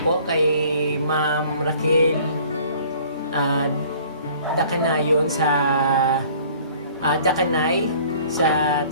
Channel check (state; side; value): inverted; both; correlation -0.53